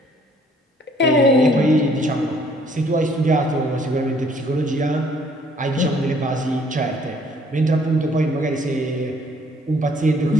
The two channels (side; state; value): both; normal; correlation 0.61